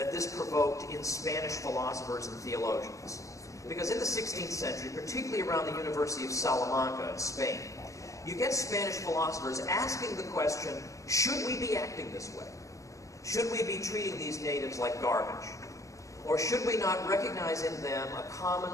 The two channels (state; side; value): late; right; 0.16 ms